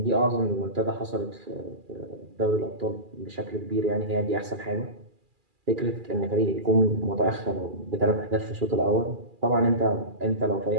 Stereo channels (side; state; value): left; late; 2.4 ms